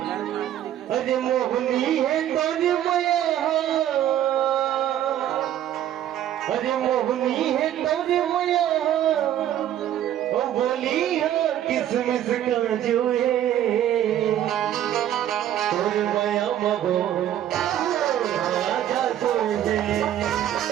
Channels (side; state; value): left; quieter; 11.5 dB